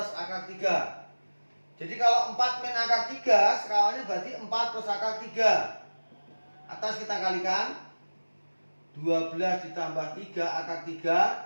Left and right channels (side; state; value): both; inverted; correlation -1.00